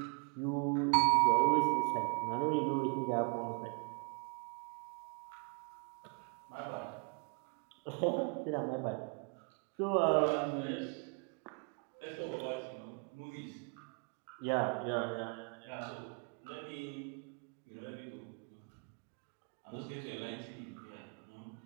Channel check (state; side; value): quieter; left; 39.9 dB